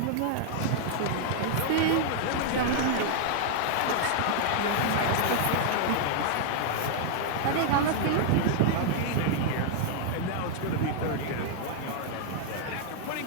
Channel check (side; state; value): both; different; correlation 0.00